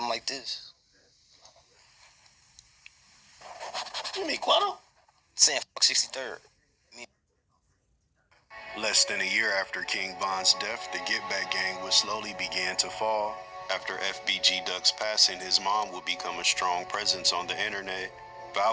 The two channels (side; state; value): both; identical; correlation 1.00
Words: like this. You mean Quando? Saying fuck 63rd. Less than a year after King Von's death, the Get Back gang would slowly begin to fall. After FBG Duck's passing, his mom would become a strong presence on the internet.